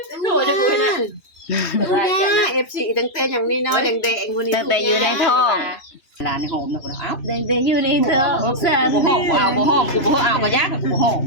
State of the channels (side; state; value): right; late; 2.9 ms